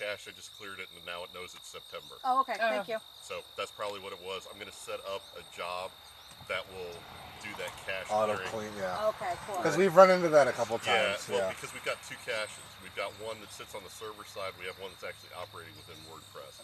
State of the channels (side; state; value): both; identical; correlation 1.00